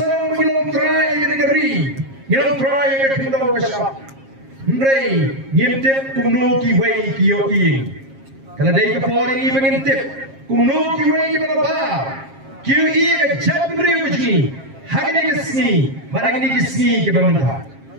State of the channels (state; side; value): late; left; 7.5 ms